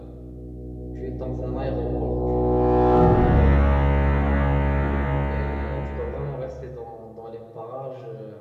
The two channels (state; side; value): identical; both; correlation 1.00